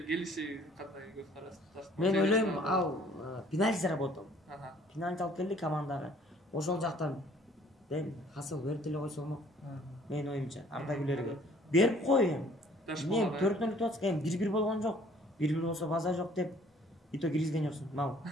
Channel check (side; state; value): both; normal; correlation 0.57